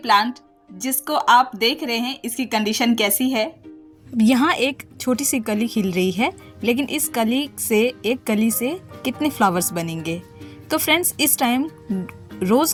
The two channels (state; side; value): identical; both; correlation 1.00